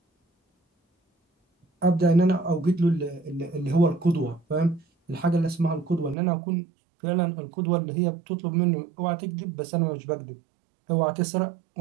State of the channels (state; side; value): drops out; left; at 6.2 s